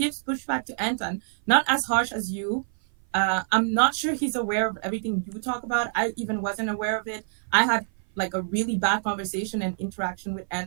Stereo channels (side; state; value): left; silent; 56 dB below the other